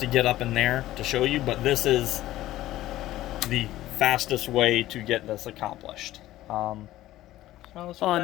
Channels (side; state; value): right; quieter; 15.1 dB